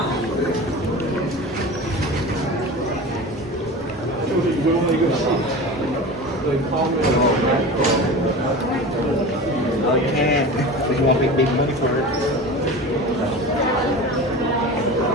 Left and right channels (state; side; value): normal; both; correlation 0.32